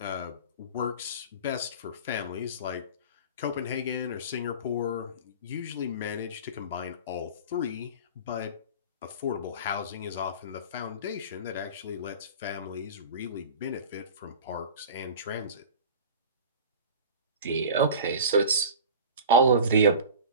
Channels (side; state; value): both; inverted; correlation -0.35